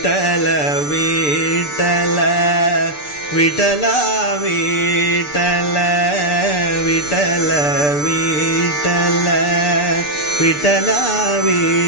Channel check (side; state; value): right; late; 6.8 ms